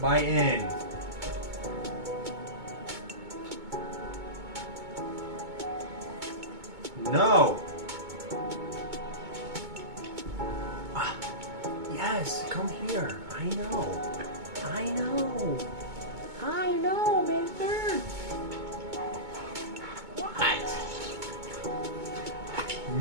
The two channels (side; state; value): left; late; 2.2 ms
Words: biting. No. Yes, come here. I know. I know. I know, mister. What?